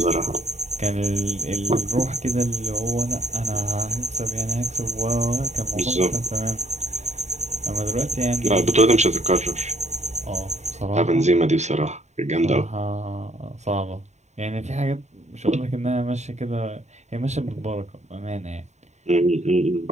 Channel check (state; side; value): late; left; 0.33 ms